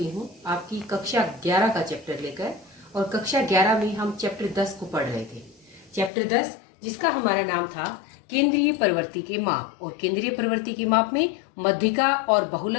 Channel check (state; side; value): drops out; right; at 6.1 s